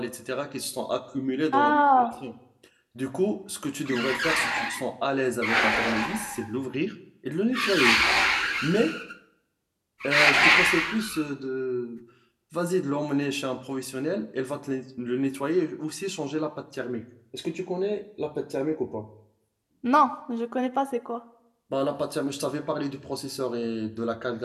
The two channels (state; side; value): identical; both; correlation 1.00